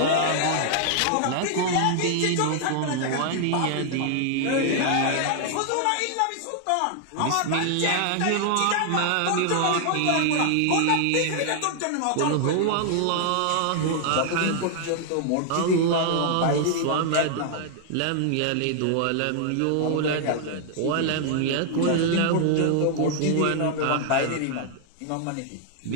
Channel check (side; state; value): both; different; correlation 0.00